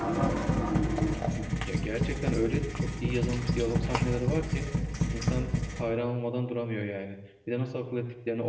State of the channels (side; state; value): both; identical; correlation 1.00